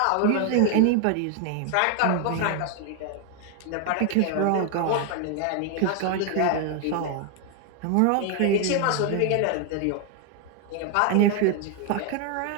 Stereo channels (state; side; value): different; both; correlation 0.01